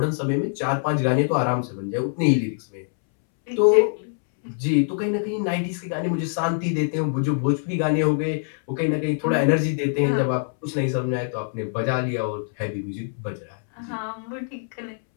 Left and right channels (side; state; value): right; silent; 63 dB below the other